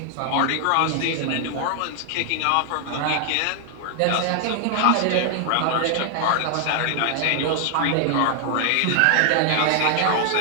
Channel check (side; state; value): both; different; correlation 0.00